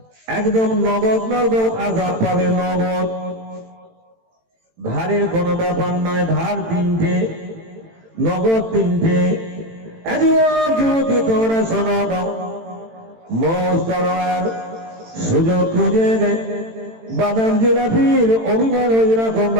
একদম নগদ নগদ আযাব পাবে। নগদ, ধারের কোনো ব্যাপার নয়। ধার 3টে, নগদ 3টে। যদি তোমরা শোনো, মৌজ করো আর সুযোগ খুঁজে দেয়, বাদাম জিলাপির অভিমান ওই রকম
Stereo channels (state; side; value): late; left; 18 ms